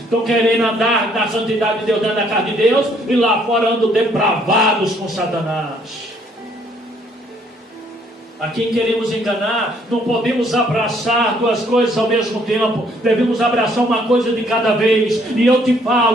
querendo andar na santidade de Deus, andar na carne de Deus, e lá fora andam depravados com Satanás. A quem queremos enganar, não podemos abraçar duas coisas ao mesmo tempo, devemos abraçar uma coisa de cada vez. E eu te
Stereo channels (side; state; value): both; normal; correlation 0.65